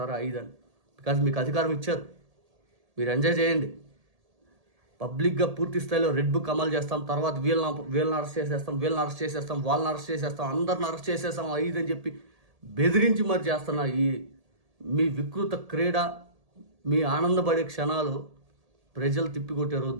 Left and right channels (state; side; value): late; left; 1.8 ms